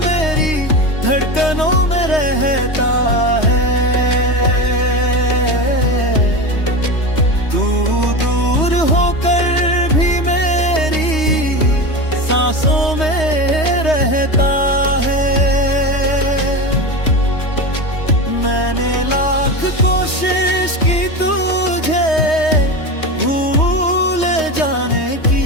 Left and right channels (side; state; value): right; late; 3.2 ms